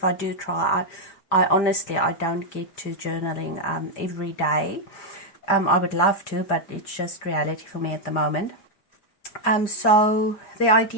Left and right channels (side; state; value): right; late; 5.0 ms